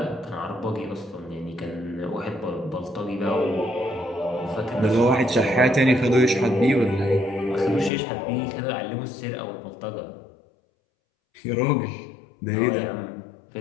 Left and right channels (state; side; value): drops out; right; at 7.9 s